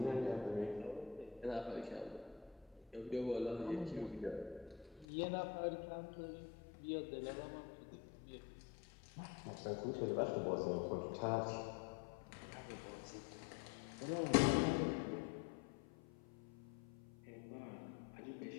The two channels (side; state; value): right; drops out; at 5.1 s